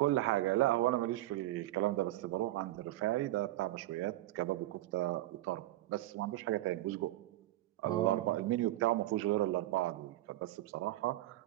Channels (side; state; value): left; quieter; 16.1 dB